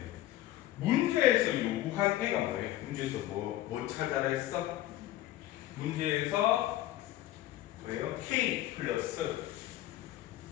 문제에서 요구한 애가 뭐예요? 문제에서 뭐 찾아라 했어? 문제에서 뭐예요? K 플러스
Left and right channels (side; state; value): right; quieter; 14.7 dB